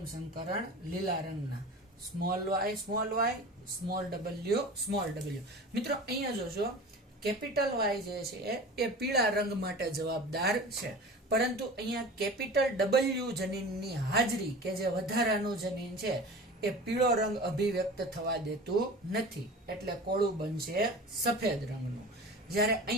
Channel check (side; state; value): both; normal; correlation 0.36